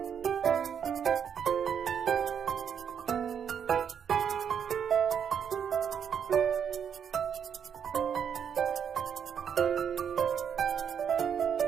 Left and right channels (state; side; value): quieter; left; 7.8 dB